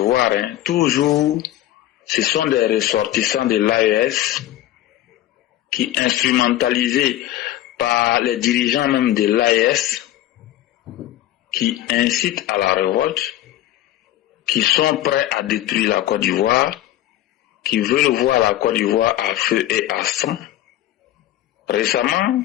toujours, ce sont des ressortissants de l'AES qui, instrumentalisés par les dirigeants même de l'AES, qui incitent à la révolte, qui sont prêts à détruire la Côte d'Ivoire, qui veulent voir la Côte d'Ivoire à feu et à sang. Récemment,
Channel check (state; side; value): quieter; right; 14.0 dB